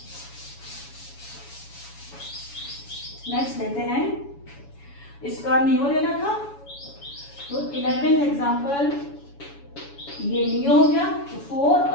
नेक्स्ट लेते हैं, इसका नियो लेना था, तो 11th एग्जांपल ये नियो हो गया, तो 4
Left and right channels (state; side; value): late; right; 7.1 ms